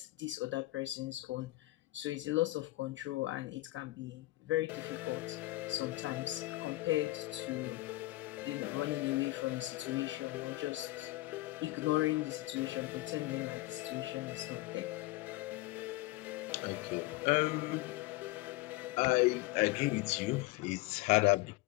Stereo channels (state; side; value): quieter; right; 19.3 dB